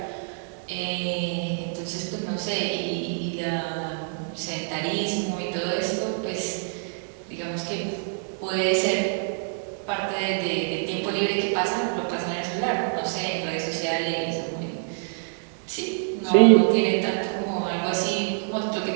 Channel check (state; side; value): silent; left; 61 dB below the other